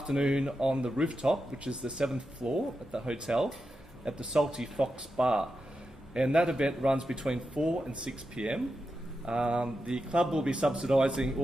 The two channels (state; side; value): normal; both; correlation 0.88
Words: on the rooftop, which is the 7th floor at the hotel, at the Salty Fox Bar. And that event runs between 4 and 6 p.m. The club will be subsidising